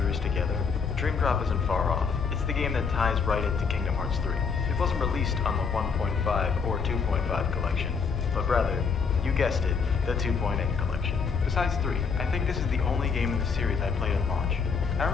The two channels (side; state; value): right; quieter; 5.6 dB